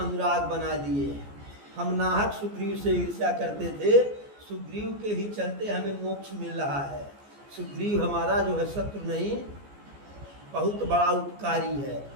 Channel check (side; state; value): left; late; 14 ms